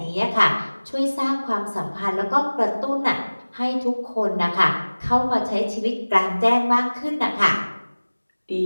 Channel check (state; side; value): inverted; both; correlation -1.00